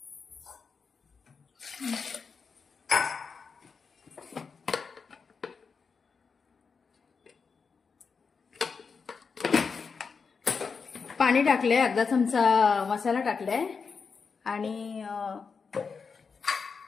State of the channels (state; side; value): quieter; right; 5.3 dB